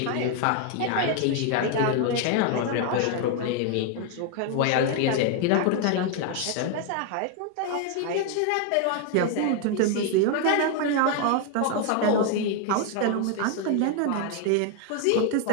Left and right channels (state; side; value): different; both; correlation 0.01